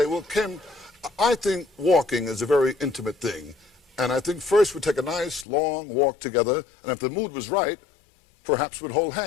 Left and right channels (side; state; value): right; drops out; at 5.5 s